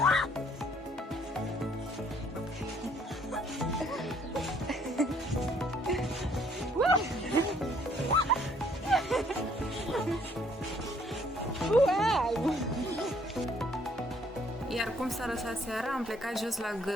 Iar cum s-a lăsat seara, am plecat jos la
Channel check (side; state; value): both; normal; correlation 0.63